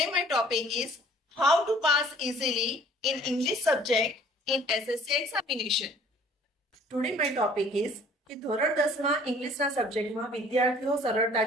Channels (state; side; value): normal; both; correlation 0.54